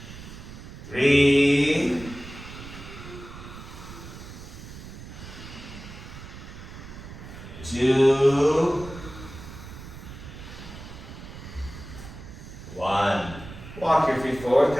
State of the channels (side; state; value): right; noise; rumble, 13 dB below the sound